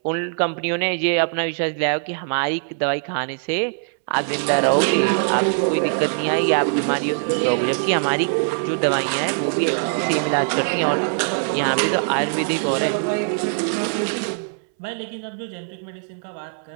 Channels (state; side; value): silent; left; 64 dB below the other